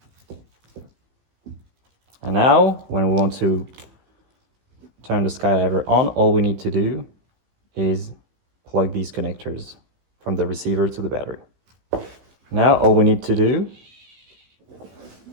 And now, when we want to turn the Skydiver on, all we need to do is plug these connectors from the receiver to the battery. Now, all we need to do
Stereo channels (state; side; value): late; left; 16 ms